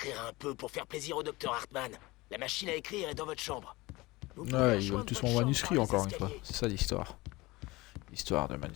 un peu pour faire plaisir au docteur Hartman? La machine à écrire est dans votre chambre. Vous pouvez Ouais, ils rejoindre veulent tous votre mon chambre manuscrit par les encore une fois. escaliers. C'est ça l'histoire. L'histoire de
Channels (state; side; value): quieter; right; 21.5 dB